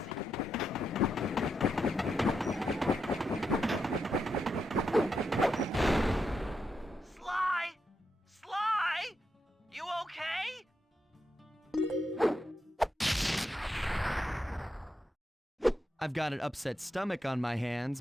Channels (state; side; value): normal; both; correlation 0.84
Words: Sly! Sly! You okay? I've got an upset stomach on my hands,